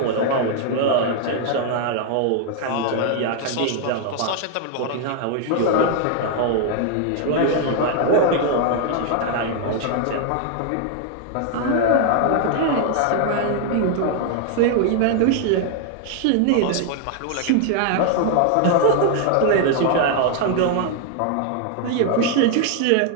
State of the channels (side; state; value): both; different; correlation 0.00